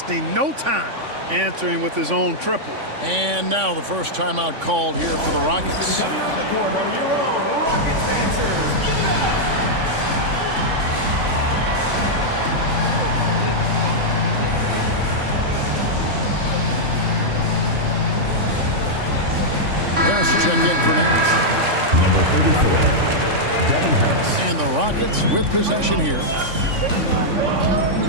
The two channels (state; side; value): late; left; 3.5 ms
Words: no time answering with his own triple. And now the first timeout called here for the Rockets. Check in for Nash. Number 34, Devin Harris. And the Rockets with possession here.